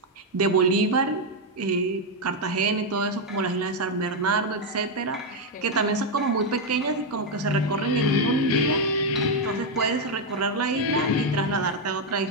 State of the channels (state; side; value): normal; both; correlation 0.03